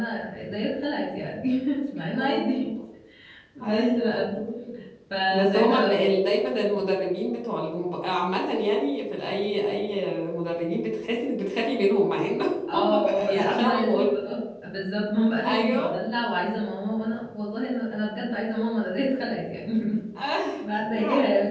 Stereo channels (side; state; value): both; identical; correlation 1.00